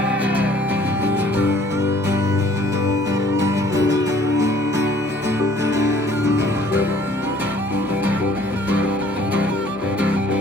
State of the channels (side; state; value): both; normal; correlation 0.57